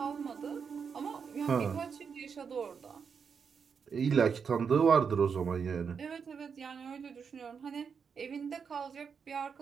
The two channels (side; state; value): left; quieter; 6.3 dB